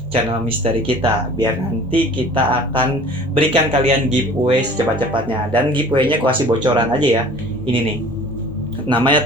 channel misteri kita biar nanti kita akan berikan kalian giveaway secepat-cepatnya. Dan giveaway-nya gue kasih bocoran aja ya. Ini nih,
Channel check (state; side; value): normal; both; correlation 0.47